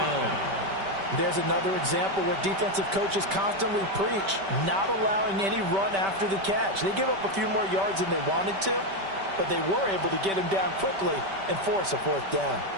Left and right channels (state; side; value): late; left; 5.1 ms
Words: There's another example where defensive coaches constantly preach not allowing any run after the catch. They give up a few more yards than they wanted to, but they were able to get him down quickly and force a fourth down.